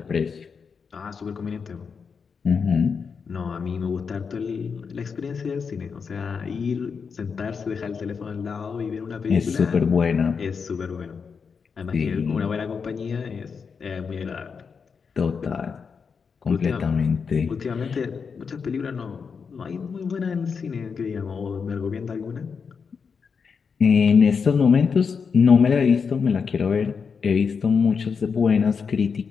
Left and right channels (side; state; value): right; quieter; 5.8 dB